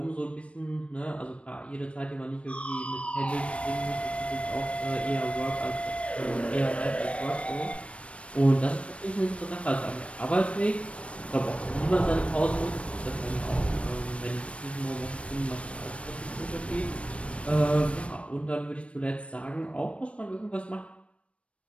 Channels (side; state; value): right; late; 0.062 ms